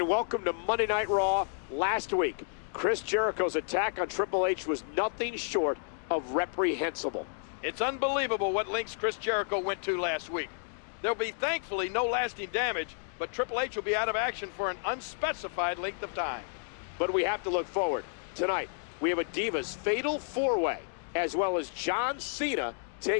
welcome to Monday Night Raw. Last week, Chris Jericho's attack on Triple H was nothing short of reprehensible. It's unbelievable what lengths Chris Jericho went to last week. There'll be thankfully no lasting damage, but Triple H will be out of action for an unspecified length of time. But we have to look forward. Tonight, we have a Divas Fatal 4-Way, as well as John Cena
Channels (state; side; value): silent; right; digital silence